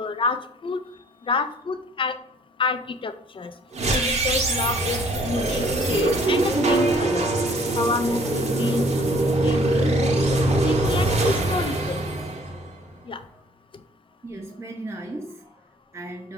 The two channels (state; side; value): normal; both; correlation 0.58